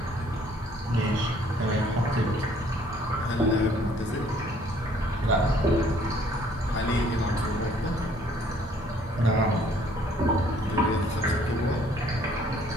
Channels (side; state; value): both; normal; correlation 0.60